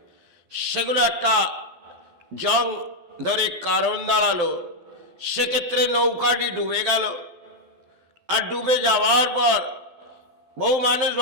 সেগুলো একটা জং ধরে কারণ দাঁড়ালো, সেক্ষেত্রে নৌকাটি ডুবে গেল। আর ডুবে যাওয়ার পর বহু মানুষ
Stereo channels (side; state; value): left; late; 12 ms